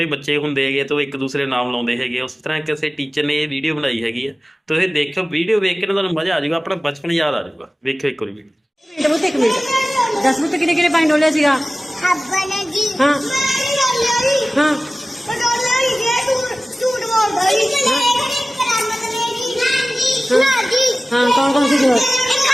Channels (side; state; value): both; normal; correlation 0.97